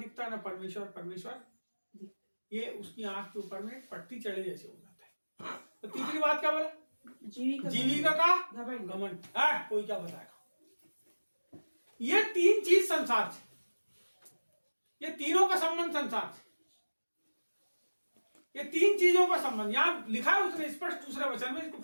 ना परमेश्वर, ये उसकी आंख के ऊपर में पट्टी चढ़े जैसे हो जाता है। तो तीसरी बात क्या बोला? जीविका का घमंड। कोई क्या बताएगा? ये 3 चीज संसार से, ये तीनों का संबंध संसार से, ये 3 चीजों का संबंध यहां लिखा है उसने स्पष्ट दूसरे वचन में। इसको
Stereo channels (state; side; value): inverted; both; correlation -1.00